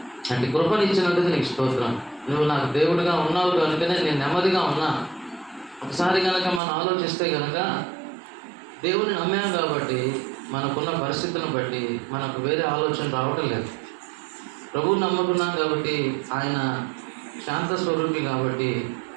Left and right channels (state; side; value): drops out; left; at 6.6 s